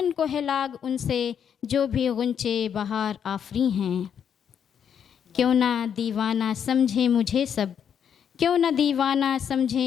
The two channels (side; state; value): right; quieter; 8.1 dB